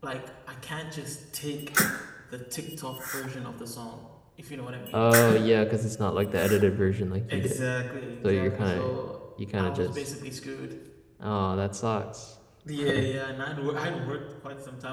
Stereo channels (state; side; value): identical; both; correlation 1.00